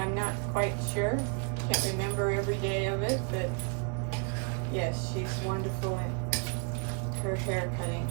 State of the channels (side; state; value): left; quieter; 37.8 dB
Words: not quite sure. Can't remember every day of it, but yes, she's wonderful at her hair cutting.